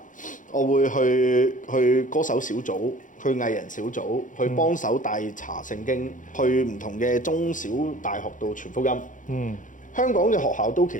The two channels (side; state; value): right; late; 0.38 ms